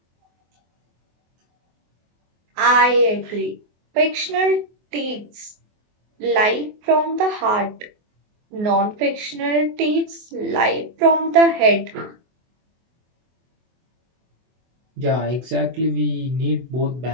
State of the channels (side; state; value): left; late; 24 ms